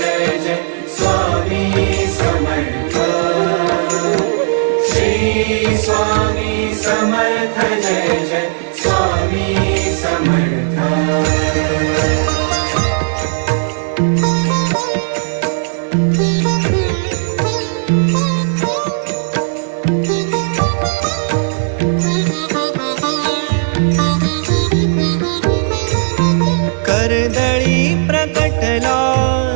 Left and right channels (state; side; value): silent; left; 67 dB below the other